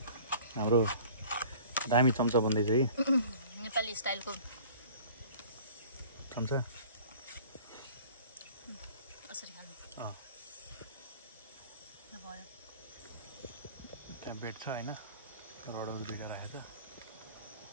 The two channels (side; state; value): both; inverted; correlation -0.47